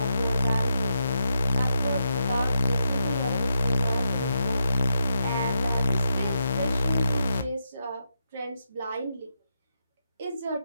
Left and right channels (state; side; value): inverted; both; correlation -0.82